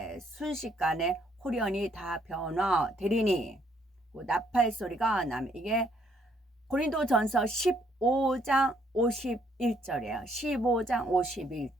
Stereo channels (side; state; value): both; normal; correlation 0.68